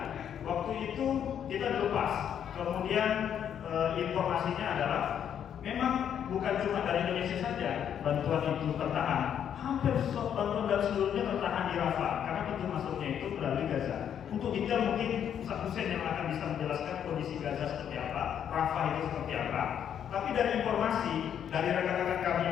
Waktu itu kita dilepas. Kemudian informasinya adalah memang bukan cuma dari Indonesia saja bantuan itu tertahan, hampir bantuan dari seluruhnya tertahan di Rafah karena pintu masuknya itu melalui Gaza. Untuk detail mungkin Ustaz Hussein yang akan bisa menjelaskan kondisi Gaza seperti apa, Rafah itu seperti apa. Tapi dari informasi dari rekan-rekan kami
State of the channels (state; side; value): quieter; right; 9.0 dB